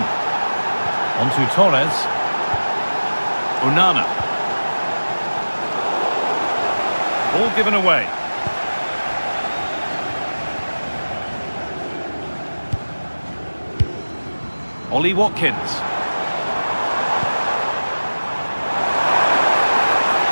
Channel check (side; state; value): both; inverted; correlation -1.00